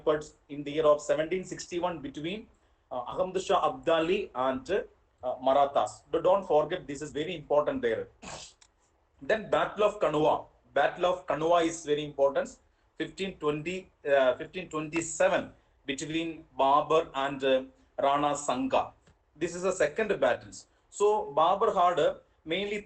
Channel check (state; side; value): identical; both; correlation 1.00